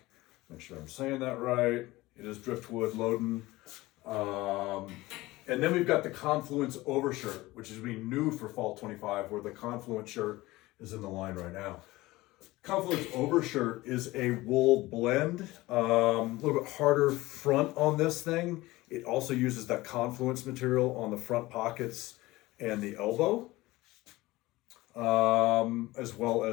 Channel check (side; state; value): right; quieter; 19.3 dB